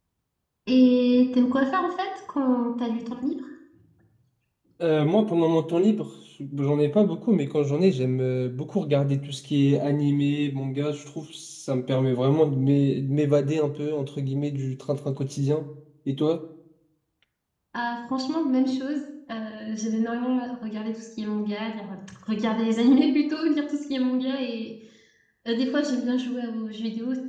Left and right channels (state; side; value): identical; both; correlation 1.00